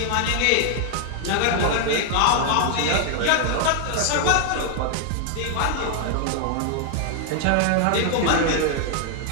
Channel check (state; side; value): different; both; correlation 0.00